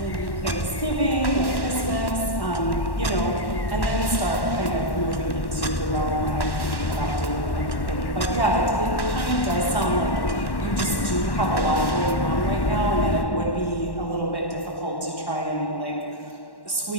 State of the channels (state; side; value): late; right; 1.1 ms